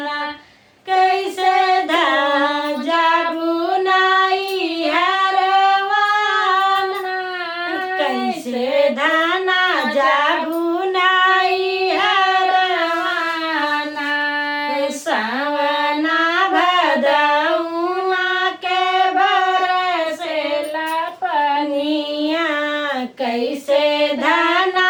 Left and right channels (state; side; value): identical; both; correlation 1.00